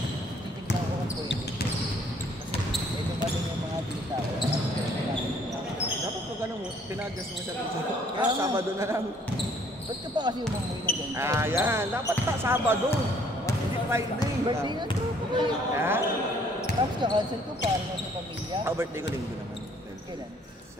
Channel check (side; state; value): both; normal; correlation 0.61